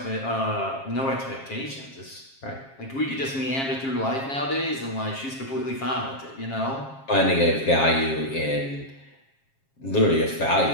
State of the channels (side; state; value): right; late; 7.4 ms